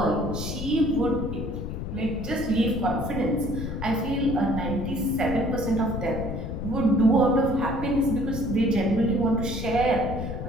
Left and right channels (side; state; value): left; noise; rumble, 5 dB below the sound